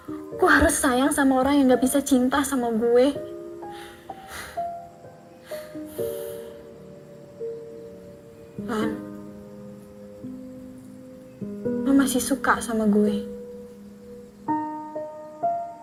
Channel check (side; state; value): both; identical; correlation 1.00